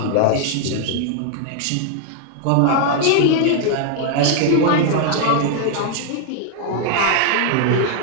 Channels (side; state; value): both; different; correlation 0.00